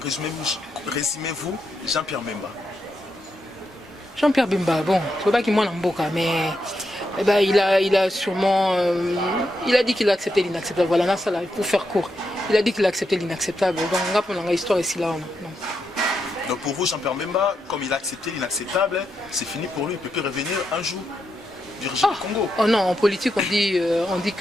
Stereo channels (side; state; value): both; normal; correlation 0.83